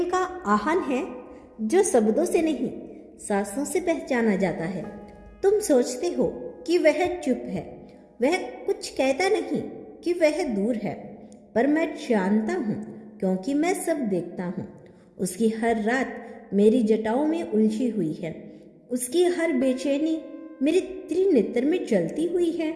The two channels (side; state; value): both; identical; correlation 1.00